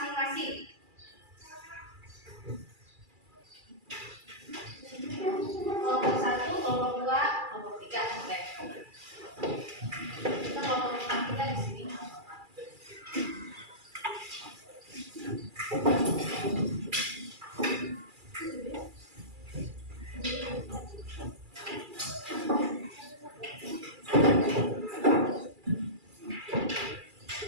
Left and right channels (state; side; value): late; left; 2.4 ms